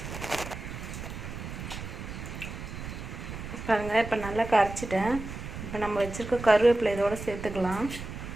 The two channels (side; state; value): right; noise; rumble, 9 dB below the sound